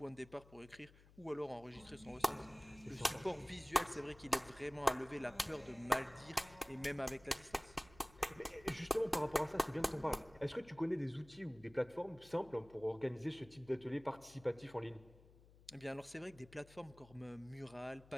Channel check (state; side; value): noise; left; hum, 23 dB below the sound